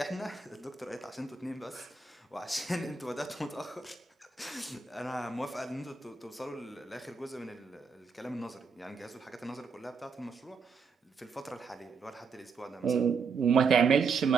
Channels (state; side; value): quieter; left; 5.1 dB